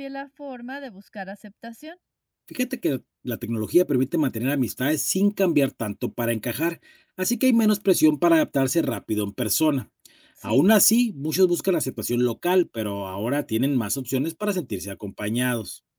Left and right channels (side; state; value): both; identical; correlation 1.00